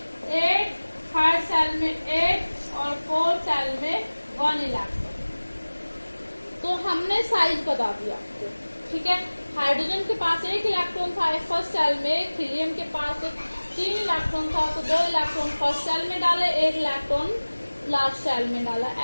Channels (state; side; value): inverted; both; correlation -1.00